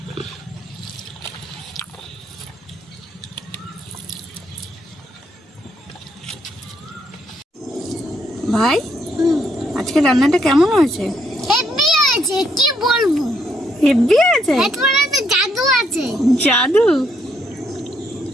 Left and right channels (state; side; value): normal; both; correlation 0.73